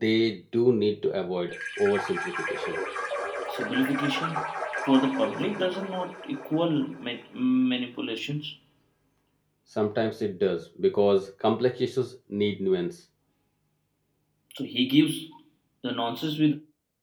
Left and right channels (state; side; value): identical; both; correlation 1.00